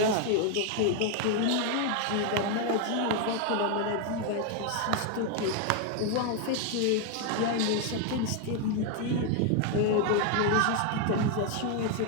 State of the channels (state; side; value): different; both; correlation 0.01